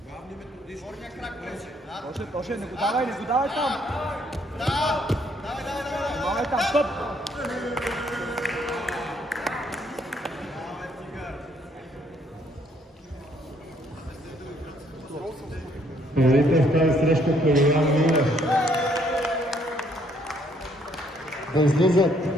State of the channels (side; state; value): both; normal; correlation 0.67